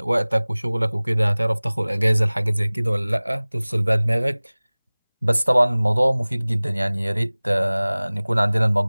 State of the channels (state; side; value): inverted; both; correlation -1.00